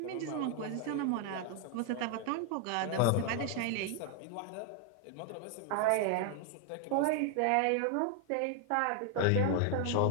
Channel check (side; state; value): both; different; correlation 0.00